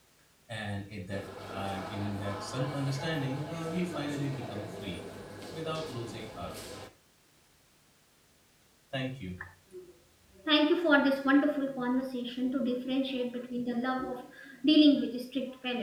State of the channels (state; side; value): identical; both; correlation 1.00